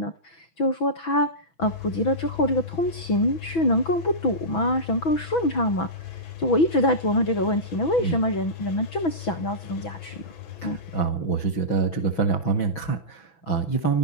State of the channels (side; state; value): right; late; 6.1 ms